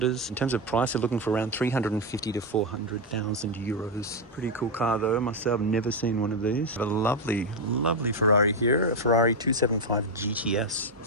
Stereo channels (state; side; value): normal; both; correlation 0.05